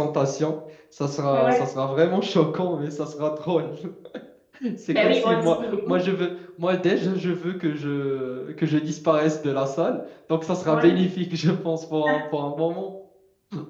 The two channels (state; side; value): identical; both; correlation 1.00